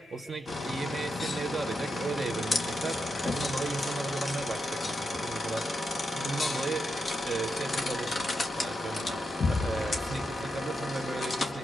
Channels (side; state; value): both; normal; correlation 0.85